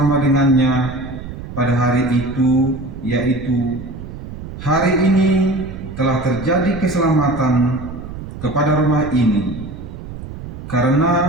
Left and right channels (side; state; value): right; noise; rumble, 11 dB below the sound